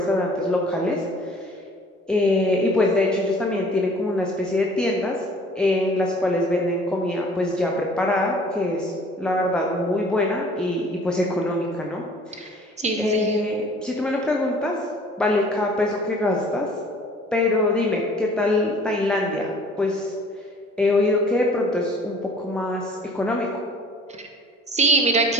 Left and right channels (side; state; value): both; normal; correlation 0.51